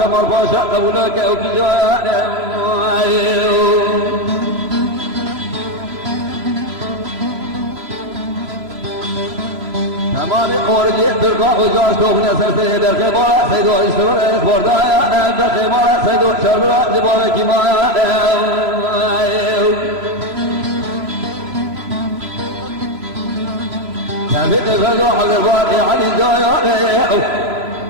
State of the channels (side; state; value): left; late; 3.0 ms